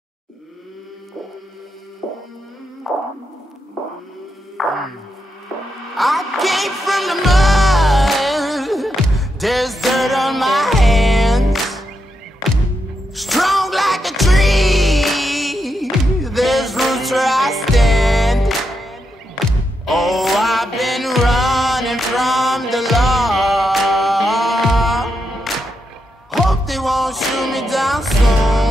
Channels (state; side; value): normal; both; correlation 0.84